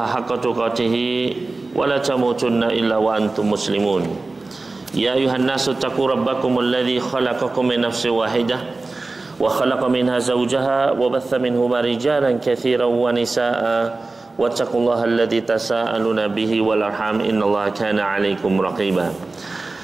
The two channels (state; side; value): quieter; left; 3.4 dB